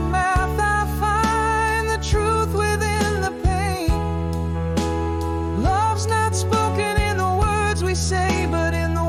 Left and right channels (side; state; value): both; identical; correlation 1.00